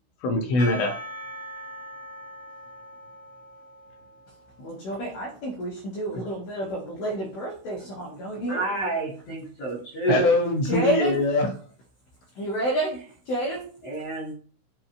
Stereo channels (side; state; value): right; late; 16 ms